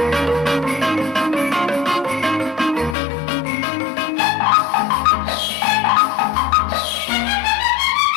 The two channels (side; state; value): right; drops out; at 3.0 s